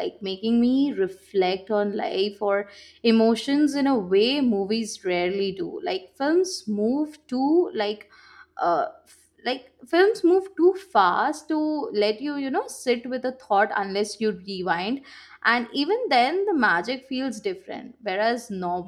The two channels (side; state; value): both; identical; correlation 1.00